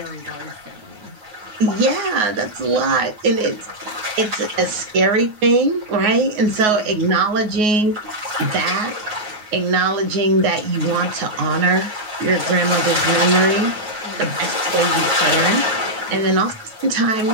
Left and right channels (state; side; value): late; left; 9.4 ms